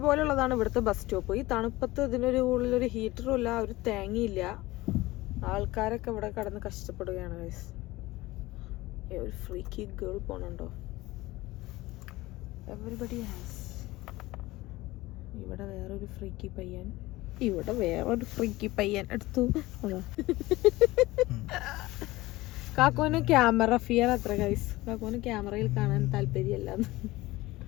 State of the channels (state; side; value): quieter; right; 19.1 dB